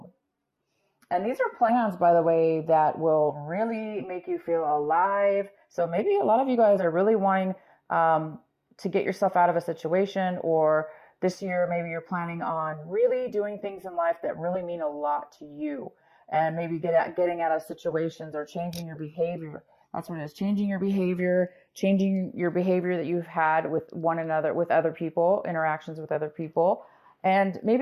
And these are plans, by the way, that will really make you feel alive. So maybe a lot of you guys are really wanting to get yourself out of a situation, or this year maybe you're planning on really doing things in life that really mean a lot to you, and maybe getting out of situations or changing your behavior. That's what it is. Changing your behavior that you've had with one another, with other people, interactions with other people. And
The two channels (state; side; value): identical; both; correlation 1.00